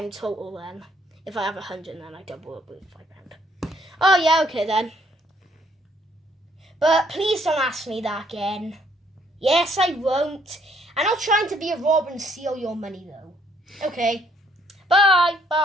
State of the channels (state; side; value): normal; both; correlation 0.66